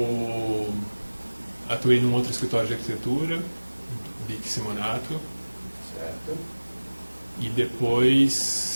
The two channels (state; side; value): inverted; both; correlation -1.00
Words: atuei num outro escritório de arquitetura, Bic Simonato. Certo. E